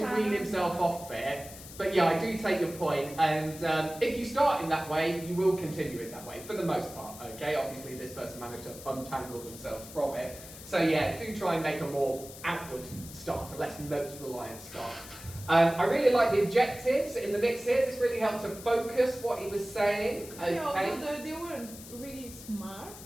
wean himself off it. But yeah, I do take your point, and if you start in that way, you will continue it that way, for the most part, okay? Obviously, this person managed to untangle themselves from it. So yeah, do try and make a more outward start, a less notes-reliant start. I really like the objectives in the mix here. This really helped to focus what he was saying. Okay. Yeah, although they weren't really smart.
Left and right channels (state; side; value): noise; left; hiss, 15 dB below the sound